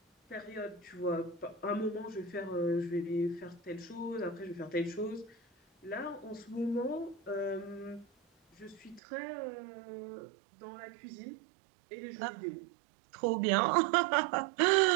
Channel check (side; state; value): left; drops out; at 9.0 s